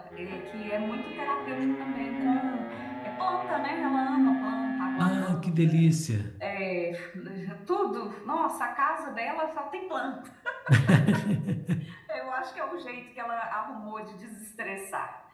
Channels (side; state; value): both; identical; correlation 1.00